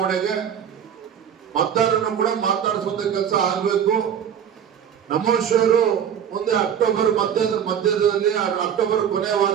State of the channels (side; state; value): left; quieter; 8.6 dB